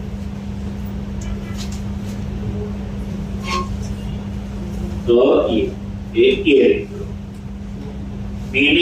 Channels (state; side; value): identical; both; correlation 1.00